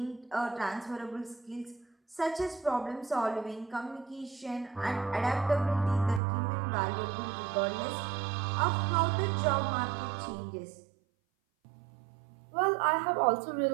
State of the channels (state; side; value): drops out; left; at 6.2 s